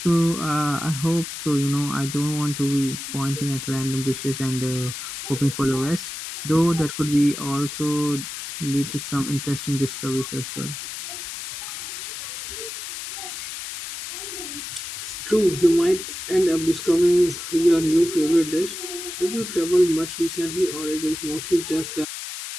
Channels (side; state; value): left; noise; hiss, 8 dB below the sound